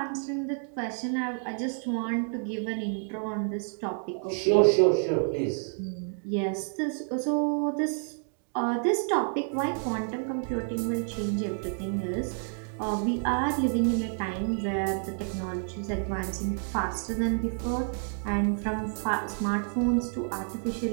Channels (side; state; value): left; silent; 56 dB below the other